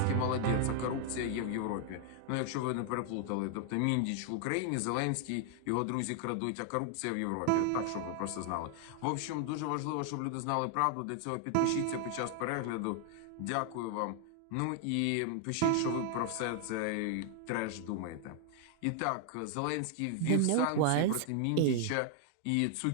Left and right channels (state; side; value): different; both; correlation 0.00